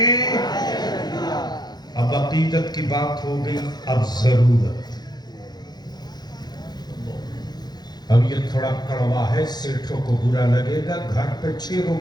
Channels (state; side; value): late; right; 0.20 ms